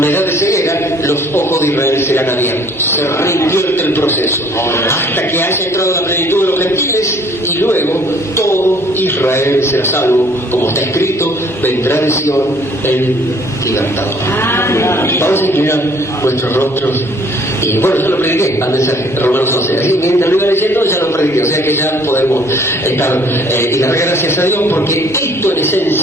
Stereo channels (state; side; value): normal; both; correlation 0.57